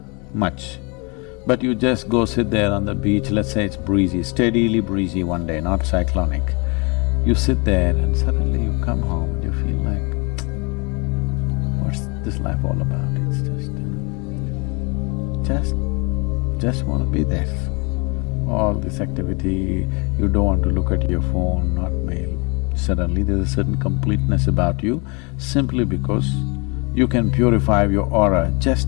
much. But you just go sit there on the beach, let's say it's breezy, steadily breezy one day, not cyclonic. You sit there and suddenly you come home and you feel like, what's this life all about? It's just want to be there. All this activity, you don't want to look at your phone, not mail. Suddenly there's a certain completeness about you simply because you can purify your aura,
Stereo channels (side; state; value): right; quieter; 30.4 dB